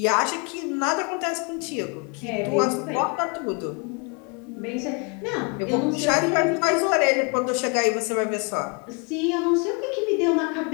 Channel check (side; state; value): right; quieter; 33.7 dB